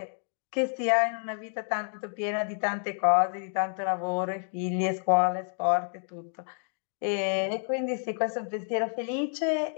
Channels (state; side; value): silent; right; digital silence